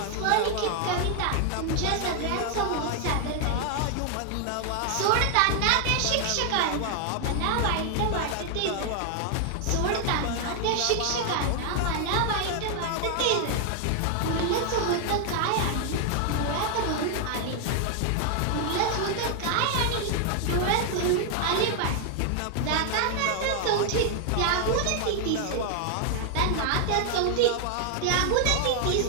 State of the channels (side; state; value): both; different; correlation 0.00